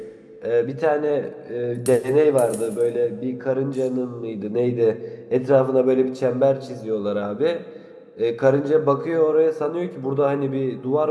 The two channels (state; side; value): identical; both; correlation 1.00